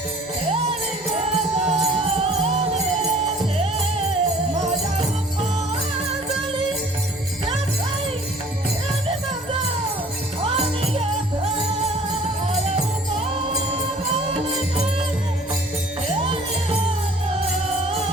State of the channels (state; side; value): normal; both; correlation 0.52